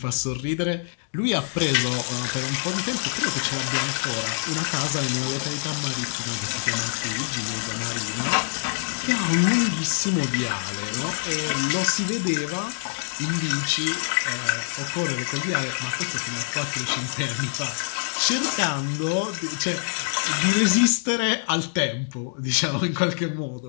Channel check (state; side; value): silent; right; digital silence